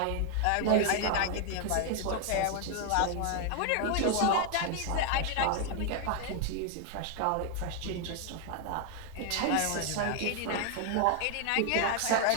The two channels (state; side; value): different; both; correlation 0.00